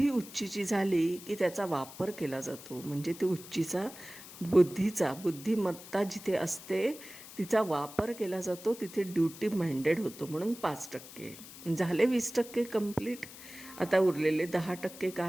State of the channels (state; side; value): noise; left; hiss, 16 dB below the sound